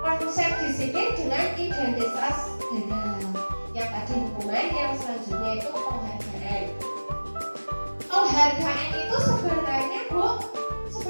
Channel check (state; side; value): inverted; both; correlation -1.00